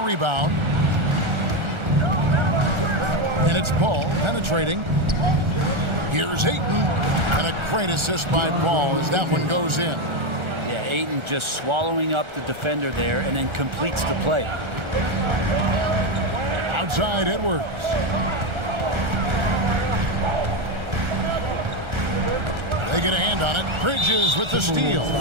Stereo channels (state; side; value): late; left; 1.4 ms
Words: And it's Paul penetrating. Here's Ayton. And a great assist by Paul as that one goes in. Yeah, Ayton just swallowing up the defender there and then completes the play. Outside Edwards. They get a hand on it. Bridges with the steal.